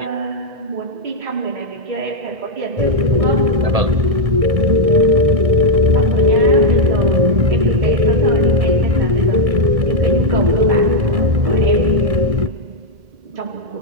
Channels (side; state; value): left; late; 1.6 ms